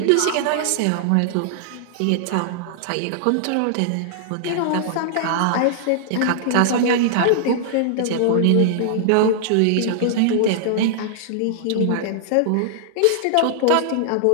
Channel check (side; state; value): both; different; correlation -0.01